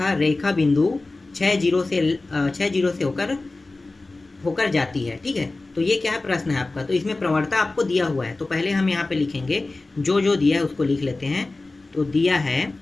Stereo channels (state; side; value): quieter; right; 3.2 dB